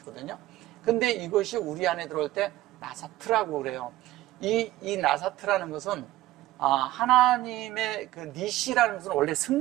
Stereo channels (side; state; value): left; quieter; 16.0 dB